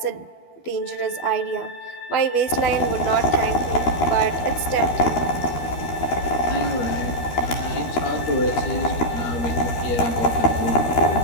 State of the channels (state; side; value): late; right; 12 ms